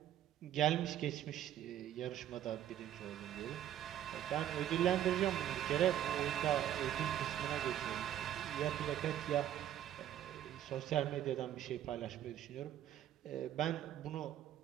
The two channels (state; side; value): quieter; left; 11.4 dB